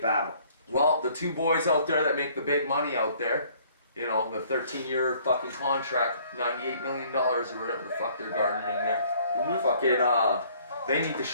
battle. Well, the two boys out there that make the big money out there, you know, the 13-year fucking contract, $98 million or whatever the fuck they're garnering there. Fucking, they need to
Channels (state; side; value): inverted; both; correlation -0.59